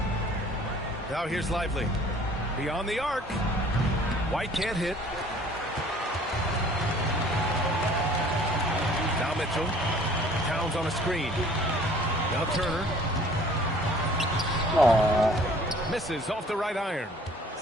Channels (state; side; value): normal; both; correlation 0.53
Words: Now here's Lively. Beyond the arc. White can't hit. Now Mitchell. Towns on a screen. Now Turner. Aww. Misses off the right iron.